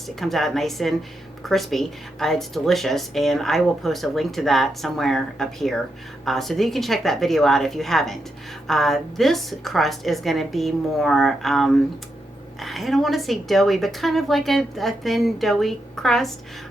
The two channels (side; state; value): both; normal; correlation 0.84